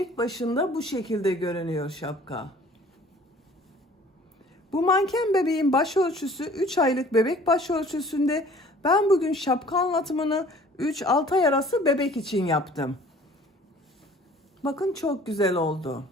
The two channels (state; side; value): normal; both; correlation 0.50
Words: başında bu şekilde görünüyor şapka. Bu manken bebeğin başölçüsü 3 aylık bebek başölçüsünde. Ben bugün şapka anlatımını 3-6 ay arası bebek için yaptım. Bakın çok güzel oldu.